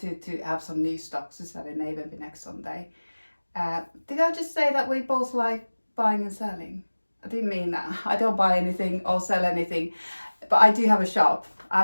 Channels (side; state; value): both; inverted; correlation -1.00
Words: have some new stocks to sell in Navenby next Sunday. Did I just say that we both like buying and selling? I didn't mean that. I don't buy anything or sell anything, but I do have a shop. I